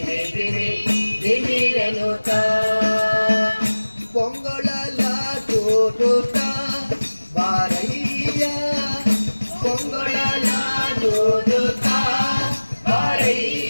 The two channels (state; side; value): inverted; both; correlation -1.00